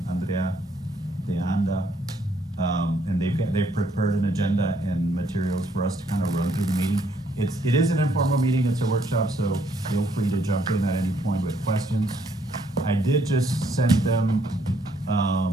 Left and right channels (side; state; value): both; normal; correlation 0.69